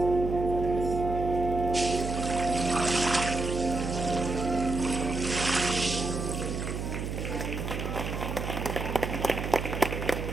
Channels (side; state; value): right; noise; hum, 4 dB below the sound